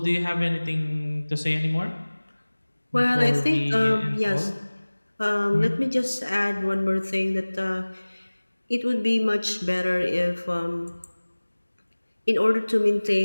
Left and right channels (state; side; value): inverted; both; correlation -1.00